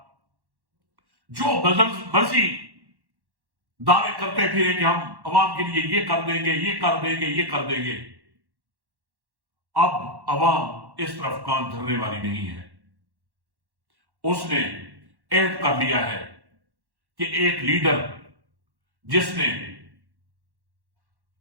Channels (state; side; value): late; left; 1.1 ms